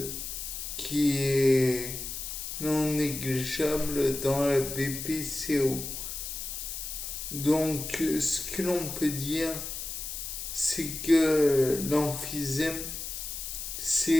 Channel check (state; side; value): noise; left; hiss, 6 dB below the sound